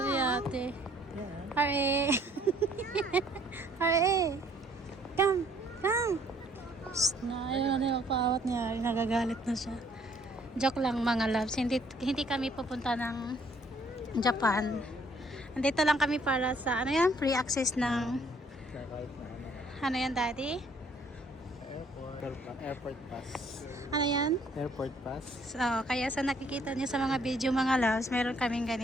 si ate. Yeah. Hare! Hare! Come! Come! Shh, na, ayaw na yung paawat niya. Nagagalit na siya. Joke lang mga loves. Hindi kami pupunta ng Japan. Andito lang kami para sa, ano yan? Free access ng, Check out na ako. ano yan, Daddy? Airport pass. Ano yan? Airport pass. So, kaya sa nakikita niyo sa mga video mga loves, meron kaming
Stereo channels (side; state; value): both; normal; correlation 0.62